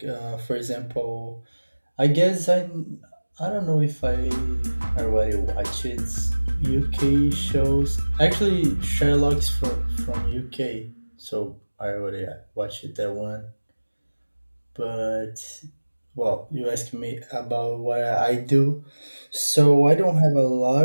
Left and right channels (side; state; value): both; inverted; correlation -1.00